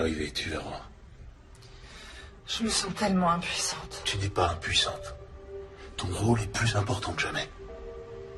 tu verras. Je me sens tellement impuissante. Tu n'es pas impuissante. Ton rôle est plus important que jamais.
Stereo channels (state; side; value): identical; both; correlation 1.00